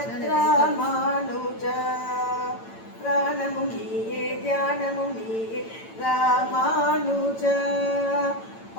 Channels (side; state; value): right; late; 8.9 ms